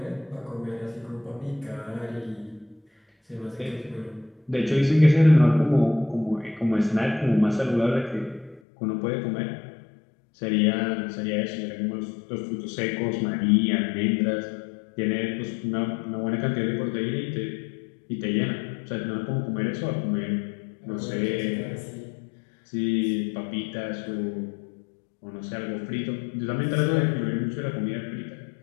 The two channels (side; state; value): right; drops out; at 8.6 s